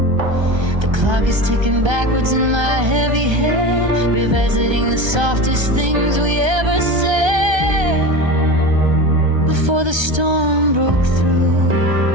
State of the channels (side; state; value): left; late; 1.3 ms